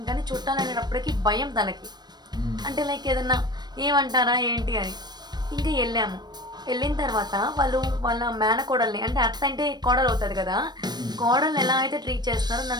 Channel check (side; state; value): left; late; 0.20 ms